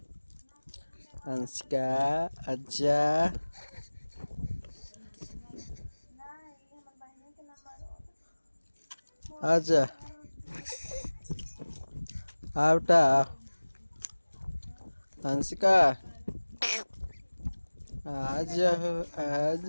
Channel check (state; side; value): inverted; both; correlation -1.00